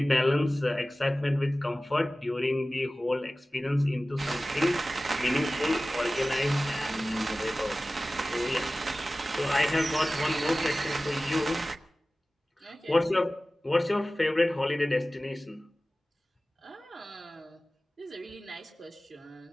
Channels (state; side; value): normal; both; correlation 0.97